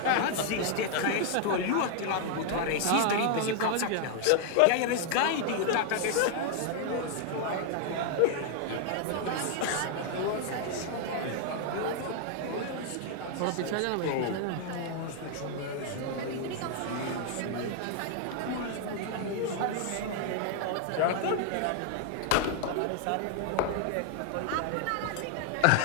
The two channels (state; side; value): different; both; correlation 0.00